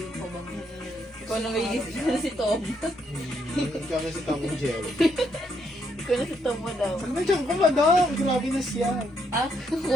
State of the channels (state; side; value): normal; both; correlation 0.75